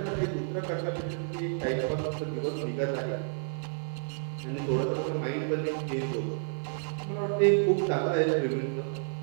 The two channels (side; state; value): left; silent; digital silence